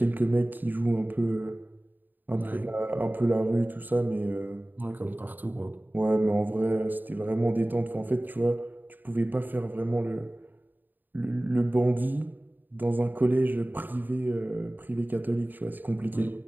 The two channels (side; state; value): left; late; 0.089 ms